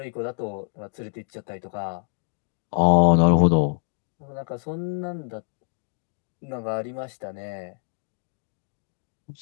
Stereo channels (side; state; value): right; silent; 57 dB below the other